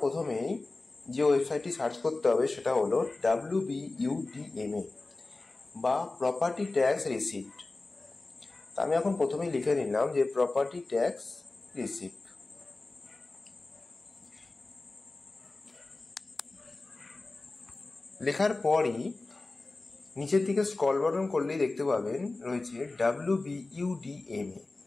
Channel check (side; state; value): right; quieter; 3.3 dB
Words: প্রথমেই যে ওয়েবসাইটটি সার্চ করতে হবে সেটা হলো WBUDMA বা প্রপার্টি ট্যাক্স রিসিপ্ট। তা আমি এখন প্রথমেই লিখে নিলাম যে প্রপার্টি ট্যাক্স রিসিপ্ট। লেখার পরই নিচের দিকে স্ক্রল বাটন করলেই দেখতে পাবেন রয়েছে WBUDMA।